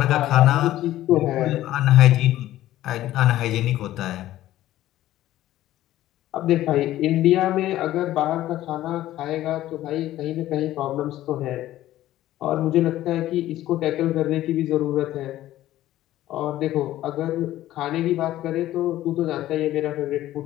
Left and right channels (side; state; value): right; quieter; 14.2 dB